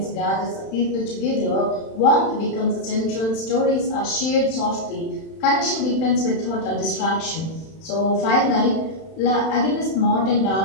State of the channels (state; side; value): late; right; 31 ms